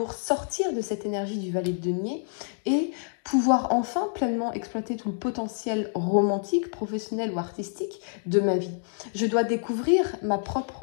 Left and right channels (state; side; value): silent; right; 60 dB below the other